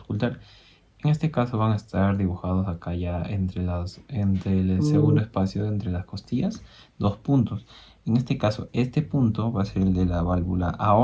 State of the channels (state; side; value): identical; both; correlation 1.00